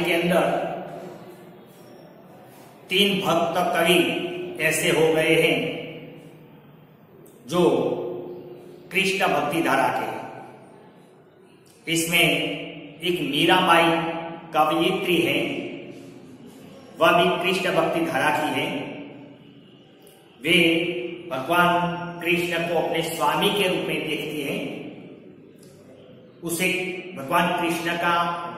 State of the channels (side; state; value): both; identical; correlation 1.00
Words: के अंदर 3 भक्त कवि ऐसे हो गए हैं जो कृष्ण भक्ति धारा के। इसमें एक मीराबाई कवयित्री है, वह भी कृष्ण भक्ति धारा की है। वे भगवान कृष्ण को अपने स्वामी के रूप में देखती हैं। उसे भगवान कृष्ण का